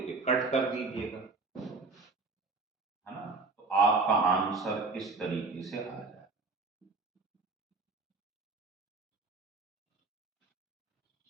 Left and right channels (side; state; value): left; quieter; 3.8 dB